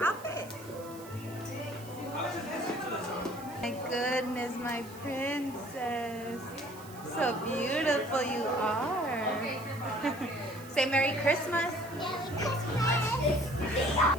outfit. My goodness, my princess. So beautiful you are. Say Merry Christmas.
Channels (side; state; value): right; noise; hiss, 19 dB below the sound